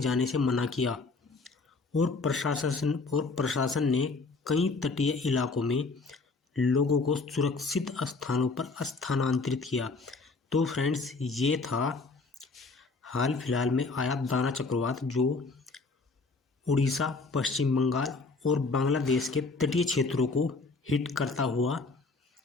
जाने से मना किया और प्रशासन ने कई तटीय इलाकों में लोगों को सुरक्षित स्थानों पर स्थानांतरित किया। तो फ्रेंड्स, ये था हाल फिलहाल में आया दाना चक्रवात जो उड़ीसा, पश्चिम बंगाल और बांग्लादेश के तटीय क्षेत्रों को हिट करता हुआ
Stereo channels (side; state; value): right; quieter; 3.9 dB